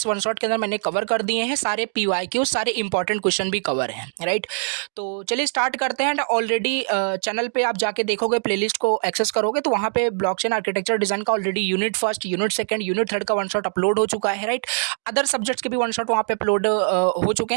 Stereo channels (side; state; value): left; silent; digital silence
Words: वन शॉट के अंदर मैंने कवर कर दिए हैं। सारे PYQ, सारे इंपॉर्टेंट क्वेश्चन भी कवर हैं। राइट, तो चलिए स्टार्ट करते हैं। ऑलरेडी चैनल पर आप जाके देखोगे, प्लेलिस्ट को एक्सेस करोगे तो वहाँ पे ब्लॉकचेन आर्किटेक्चर डिज़ाइन का already unit first, unit second, unit third का वन शॉट अपलोड हो चुका है। राइट, अदर सब्जेक्ट्स के भी वन शॉट वहाँ पे अपलोड हो चुके